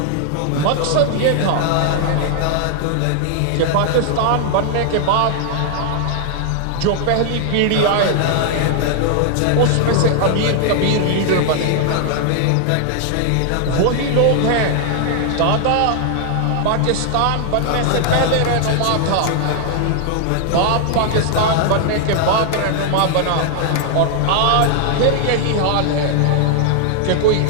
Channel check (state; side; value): different; both; correlation 0.00